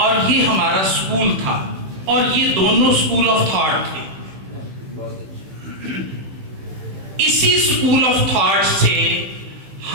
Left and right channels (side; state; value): left; late; 16 ms